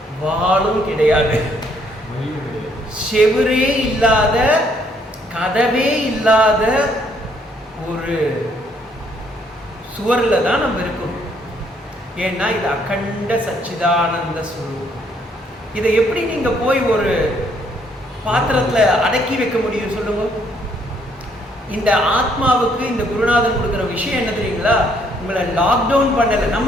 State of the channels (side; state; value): both; normal; correlation 0.68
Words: வாலும் கிடையாது, செவரே இல்லாத, கதவே இல்லாத ஒரு சுவரில் தான் நம்ம இருக்கோம். ஏன்னா இது அகண்ட சச்சிதானந்த ஸ்வரூபம். இதை எப்படி நீங்க போய் ஒரு பாத்திரத்துல அடக்கி வைக்க முடியும் சொல்லுங்க? இந்த ஆத்மாவுக்கு இந்த குருநாதன் கொடுக்குற விஷயம் என்ன தெரியுங்களா? உங்களை லாக்டவுன் பண்ணல.